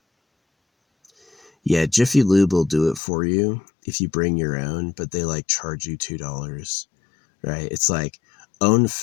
yeah, Jiffy Lube will do it for you if you bring your own, but they like charge you $2, right? It's like own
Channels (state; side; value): drops out; right; at 3.0 s